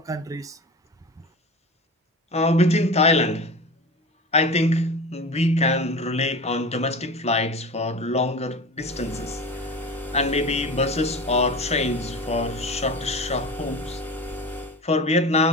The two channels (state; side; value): normal; both; correlation 0.31